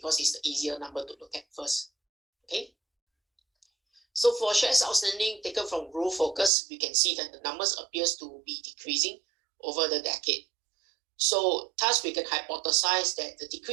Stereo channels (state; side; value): drops out; left; at 6.5 s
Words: it's the easier number to look at first. Okay. So for shares outstanding taken from Growth Focus, we can see that the numbers appears to be decreasing over the decade. So thus we can hypothesize that the